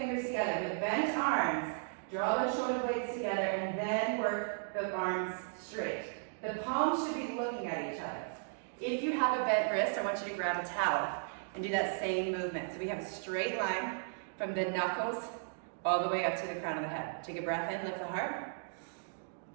together with bent arms. Draw the shoulder blades together and then work the arms straight. The palms should be looking at each other. If you have a bent wrist, I want you to grab a towel and do that same movement. So we have a straight line from the knuckles all the way up to the crown of the head. Take a breath in, lift the heart.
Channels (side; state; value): left; silent; digital silence